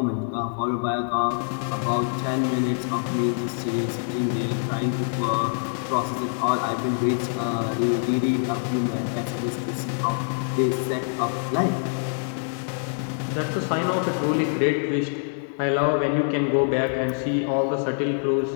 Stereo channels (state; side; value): silent; right; digital silence